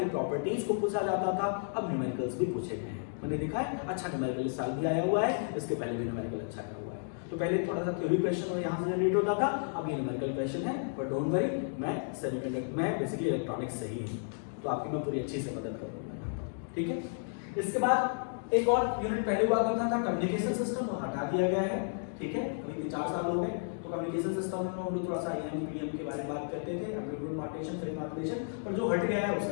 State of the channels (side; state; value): right; silent; digital silence